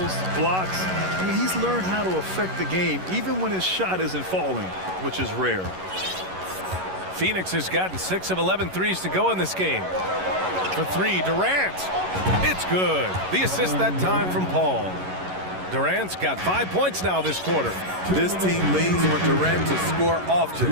blocks. I mean, he's learned how to affect the game, even when his shot isn't falling, which is rare. Phoenix has gotten 6 of 11 threes to go in this game. For 3, Durant. It's good. The assist that time from Paul. Durant's got 5 points now this quarter. This team leans on Durant to score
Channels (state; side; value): late; left; 11 ms